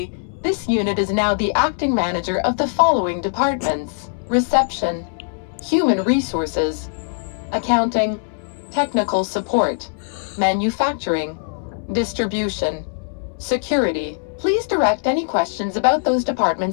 this unit is now the acting manager of the following departments: Reception, Human Resources, Accounting, Technical Support, Manufacturing, Distribution, Security. Please direct any questions about those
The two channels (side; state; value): right; silent; digital silence